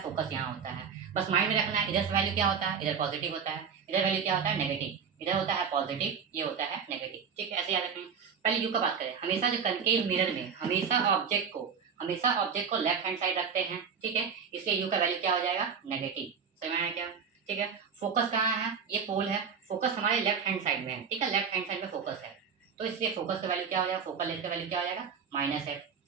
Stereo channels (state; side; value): quieter; left; 6.5 dB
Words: फोकस यहाँ होता है, बस माइंड में रखना है, इधर से वैल्यू क्या होता है, इधर पॉजिटिव होता है, इधर वैल्यू क्या होता है, नेगेटिव, इधर होता है पॉजिटिव, ये होता है नेगेटिव, ठीक है। ऐसे याद रखें। पहले यू का बात करें, हमेशा जो कनकेव मिरर में हमेशा ऑब्जेक्ट को लेफ्ट हैंड साइड रखते हैं, ठीक है, इसलिए यू का वैल्यू क्या हो जाएगा, नेगेटिव। समझ आया क्या, ठीक है। फोकस कहाँ है, ये पोल है, फोकस हमारे लेफ्ट हैंड साइड में है, ठीक है, लेफ्ट हैंड साइड में फोकस है, तो इसलिए फोकस का वैल्यू क्या हो जाएगा, फोकल लेंथ का वैल्यू क्या हो जाएगा, -f,